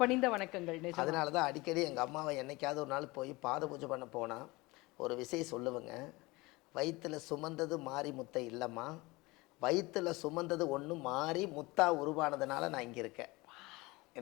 பணிந்த வணக்கங்கள். அதனால தான் அடிக்கடி எங்கள் அம்மாவை என்னைக்காவது ஒரு நாள் போய் பாத பூஜை பண்ண போனால் ஒரு விஷயம் சொல்லுவேங்க. வயிற்றுல சுமந்தது மாறி முத்தை இல்லைம்மா, வயிற்றுல சுமந்தது ஒன்று மாறி முத்தா உருவானதுனால நான் இங்கே இருக்கேன்.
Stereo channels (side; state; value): right; quieter; 22.7 dB